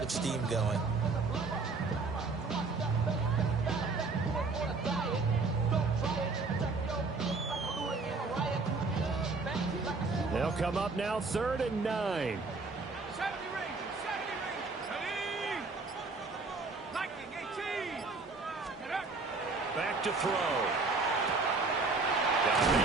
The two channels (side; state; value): left; quieter; 3.9 dB